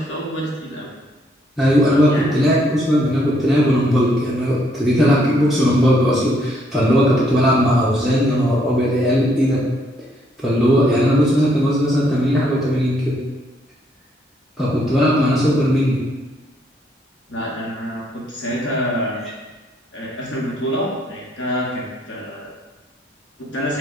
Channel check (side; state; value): both; normal; correlation 0.70